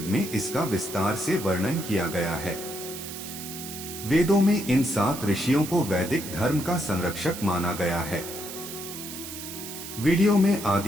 में इसका विस्तार से वर्णन किया गया है। वेदों में इन 7 ऋषियों को वैदिक धर्म का संरक्षक माना गया है। वीडियो में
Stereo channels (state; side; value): noise; right; hiss, 10 dB below the sound